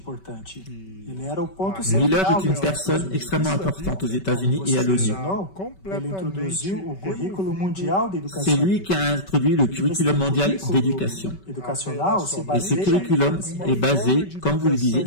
Miller est une personne extrêmement importante aux États-Unis et à l'ONU. C'est lui qui a introduit le curriculum mondial d'éducation. Et ce curriculum est basé, comme vous le disiez,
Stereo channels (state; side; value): late; right; 5.2 ms